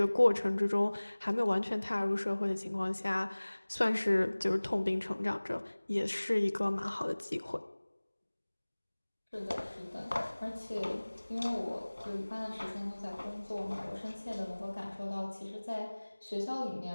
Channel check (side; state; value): both; inverted; correlation -1.00